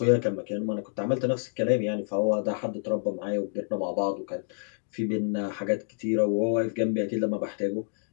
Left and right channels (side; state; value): right; silent; digital silence